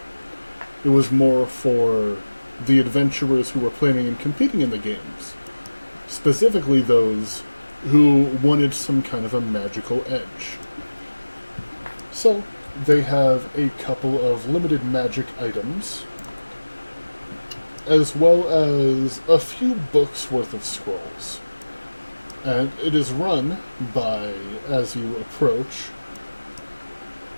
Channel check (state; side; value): inverted; both; correlation -1.00